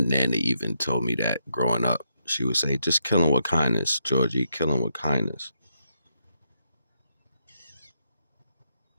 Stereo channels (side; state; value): both; inverted; correlation -0.80